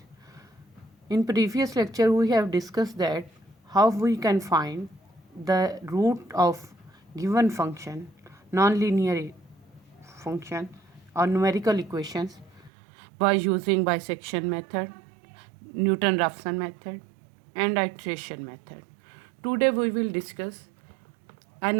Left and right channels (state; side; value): drops out; left; at 12.7 s